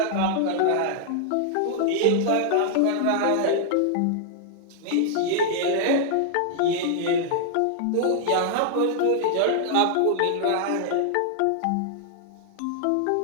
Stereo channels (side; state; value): both; different; correlation -0.01